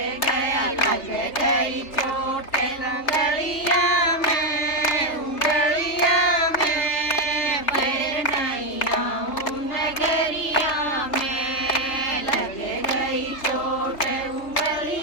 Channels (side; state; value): right; late; 3.3 ms